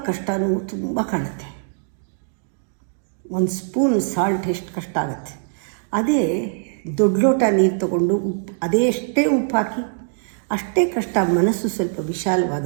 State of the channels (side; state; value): left; silent; digital silence